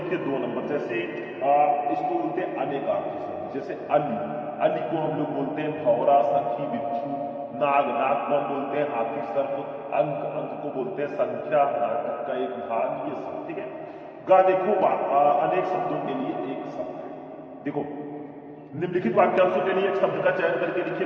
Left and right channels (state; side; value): identical; both; correlation 1.00